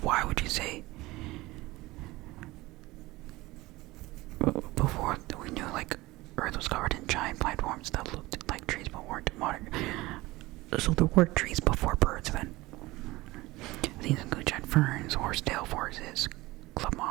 Why would you say before we knew like Earth was covered in giant plant forms that looked like trees but weren't modern? So there were trees before birds then. These include giant ferns, horsetail forests, club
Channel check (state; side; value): quieter; left; 19.9 dB